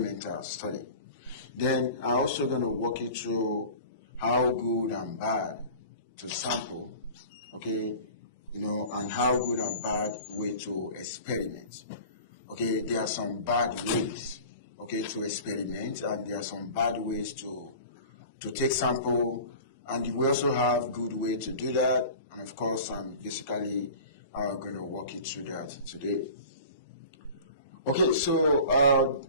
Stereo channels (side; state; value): both; inverted; correlation -0.39